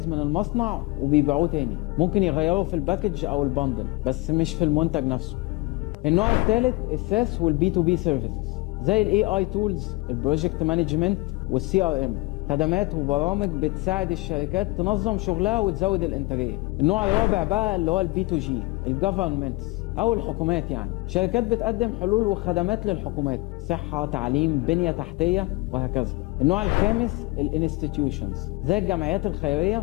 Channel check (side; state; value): right; quieter; 22.1 dB